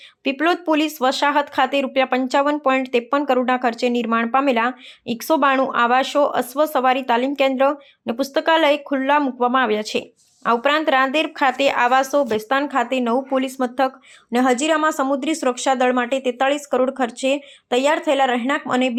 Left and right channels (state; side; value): identical; both; correlation 1.00